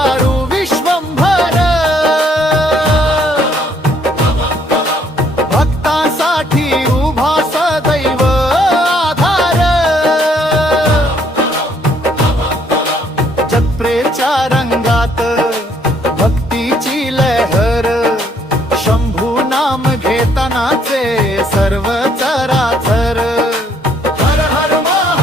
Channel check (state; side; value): normal; both; correlation 0.66